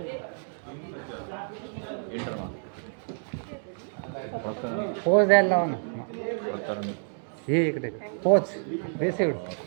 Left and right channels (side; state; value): left; silent; 59 dB below the other